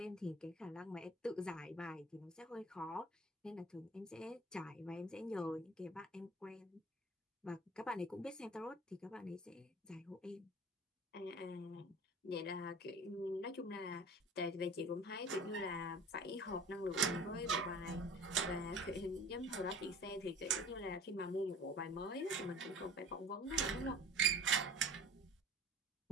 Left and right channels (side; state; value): both; normal; correlation 0.42